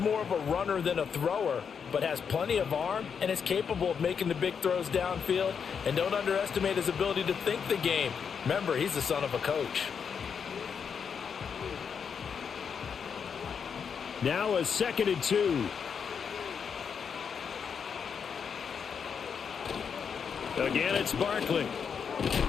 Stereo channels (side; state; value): right; quieter; 6.7 dB